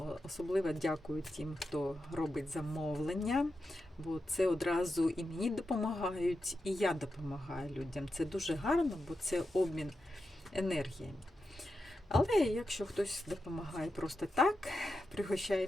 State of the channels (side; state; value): both; normal; correlation 0.89